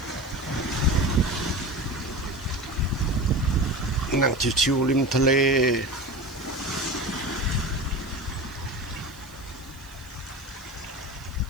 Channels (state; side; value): noise; right; hiss, 24 dB below the sound